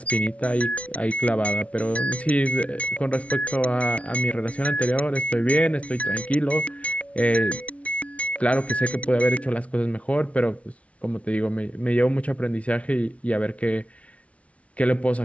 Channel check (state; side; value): late; right; 0.064 ms